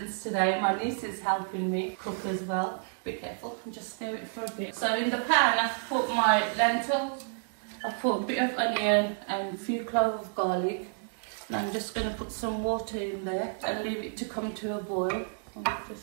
today. My niece is helping me cook as well. Be careful, just stir it for a bit. So in the pan I've put my lentils, I've put a bit of onion and a few cloves of garlic. And I'm just going to put some water in there and leave it to come to a boil.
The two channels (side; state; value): left; silent; 58 dB below the other